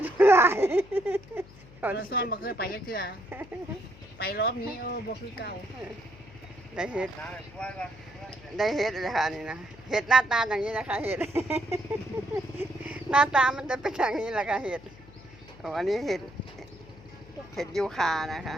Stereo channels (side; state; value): left; noise; hum, 21 dB below the sound